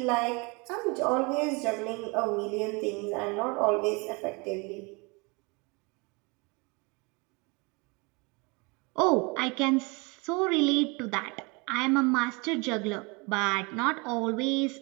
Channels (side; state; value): left; quieter; 28.7 dB